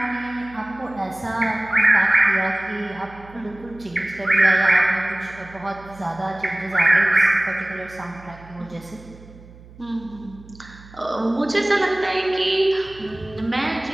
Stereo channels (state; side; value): noise; right; hum, 21 dB below the sound